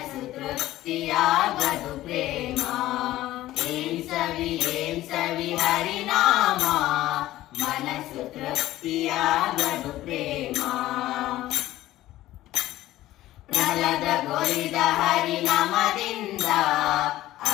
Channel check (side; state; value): right; quieter; 15.3 dB